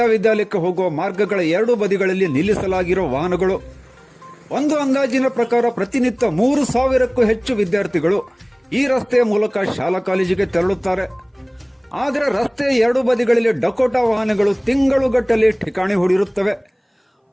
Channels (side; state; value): both; identical; correlation 1.00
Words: ವಿದ್ಯಾಲಯಕ್ಕೆ ಹೋಗುವ ಮಾರ್ಗಗಳ ಎರಡೂ ಬದಿಗಳಲ್ಲಿ ನಿಲ್ಲಿಸಲಾಗಿರುವ ವಾಹನಗಳು. ಒಂದು ಅಂದಾಜಿನ ಪ್ರಕಾರ ಪ್ರತಿನಿತ್ಯ 3,000ಕ್ಕೂ ಹೆಚ್ಚು ವಿದ್ಯಾರ್ಥಿಗಳು ಈ ರಸ್ತೆಯ ಮೂಲಕ ಶಾಲಾ ಕಾಲೇಜಿಗೆ ತೆರಳುತ್ತಾರೆ. ಆದರೆ ರಸ್ತೆಯ ಎರಡೂ ಬದಿಗಳಲ್ಲಿ ಡಕೋಟಾ ವಾಹನಗಳು ತಿಂಗಳುಗಟ್ಟಲೆ ಠಿಕಾಣಿ ಹೂಡಿರುತ್ತವೆ.